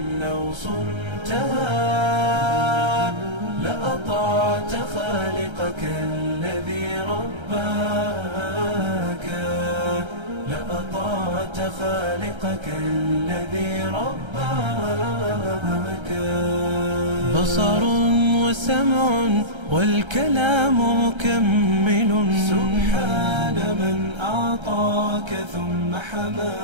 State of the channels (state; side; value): late; left; 1.3 ms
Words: لو صنتها لأطعت خالقك الذي رباك، لأطعت خالقك الذي رباك. بصر وسمع والكلام مكمل، سبحان من أعطاك ثم